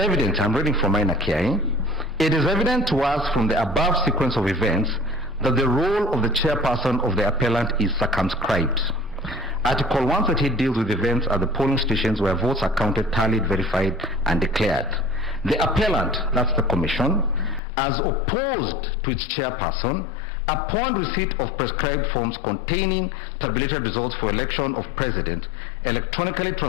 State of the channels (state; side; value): drops out; right; at 17.6 s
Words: I'm reading from minor KI, it is evident to us from the above sequence of events that the role of the chairperson of the appellant is circumscribed. Article 138 deals with events at the polling stations where votes are counted, tallied, verified, and declared. The appellant, that's the commission, as opposed to its chairperson, upon receipt of prescribed forms containing tabulated results for election of president, electronically